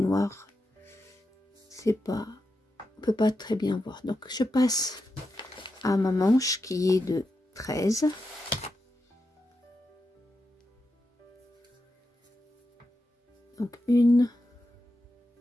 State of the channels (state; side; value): normal; both; correlation 0.88